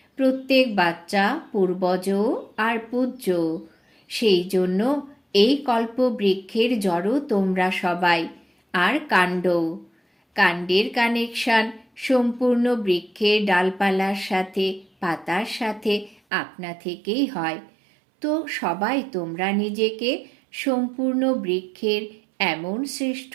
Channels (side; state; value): left; drops out; at 16.2 s